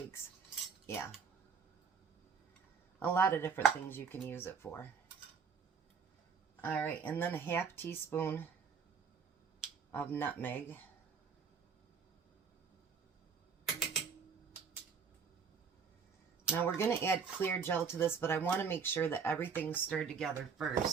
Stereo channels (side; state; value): left; quieter; 6.1 dB